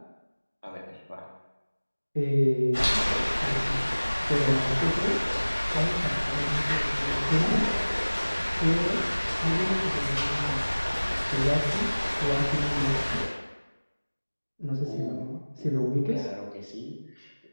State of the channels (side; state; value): both; inverted; correlation -1.00